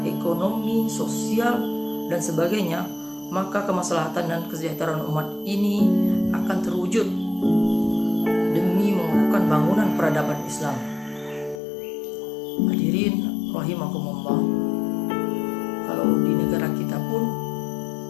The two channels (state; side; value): drops out; right; at 11.6 s